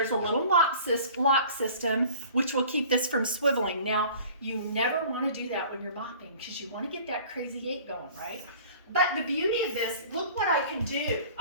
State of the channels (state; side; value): inverted; both; correlation -0.46